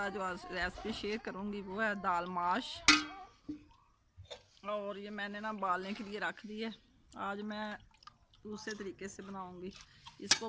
जो आज रेसिपी शेयर करूंगी वो है दाल माश। और ये मैंने ना बालने के लिए रख दी है। आज मैं दूसरे तरीके से बनाऊंगी। इसको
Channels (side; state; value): both; identical; correlation 1.00